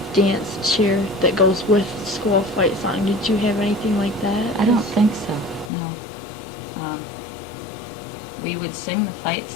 dance cheer that goes with the school fight song? Did you have anything like that? I don't think so, no. We would sing the fight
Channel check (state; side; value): drops out; right; at 5.7 s